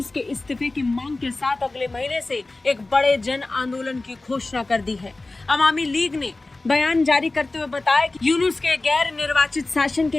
के इस्तीफे की मांग के साथ अगले महीने से एक बड़े जन आंदोलन की घोषणा कर दी है। अवामी लीग ने बयान जारी करते हुए बताया कि यूनुस के गैर निर्वाचित शासन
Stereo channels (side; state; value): right; quieter; 3.1 dB